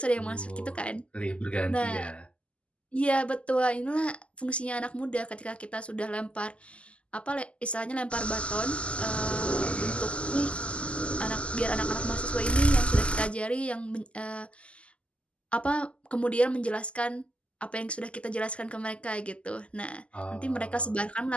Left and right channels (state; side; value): late; right; 0.056 ms